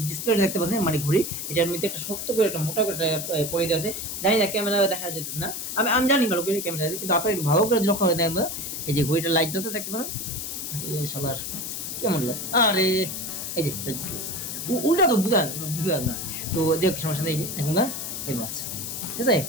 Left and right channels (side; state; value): left; noise; hiss, 5 dB below the sound